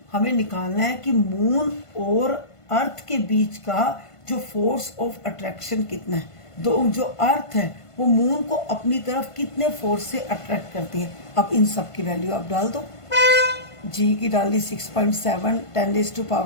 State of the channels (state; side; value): late; right; 1.5 ms